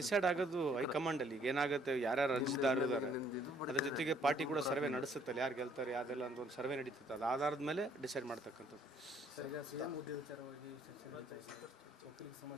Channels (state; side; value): normal; both; correlation 0.63